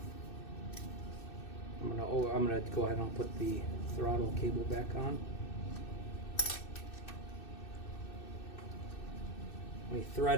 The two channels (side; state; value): right; late; 2.6 ms